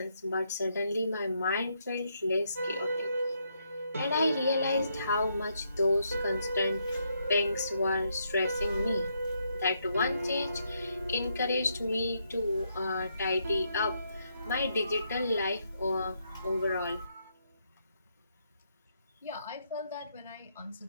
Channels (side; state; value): both; inverted; correlation -0.77